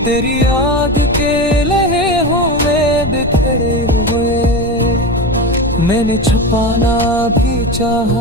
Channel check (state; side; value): noise; left; rumble, 11 dB below the sound